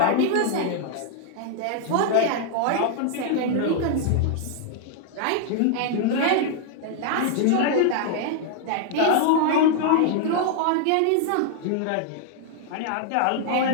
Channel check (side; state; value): both; different; correlation 0.00